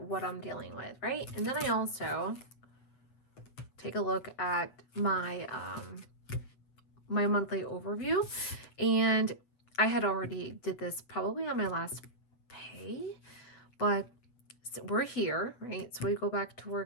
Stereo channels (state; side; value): late; right; 8.0 ms